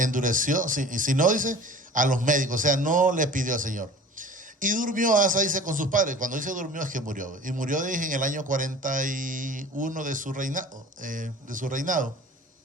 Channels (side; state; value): both; normal; correlation 0.44